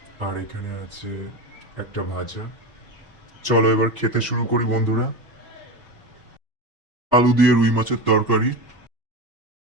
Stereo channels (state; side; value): normal; both; correlation 0.22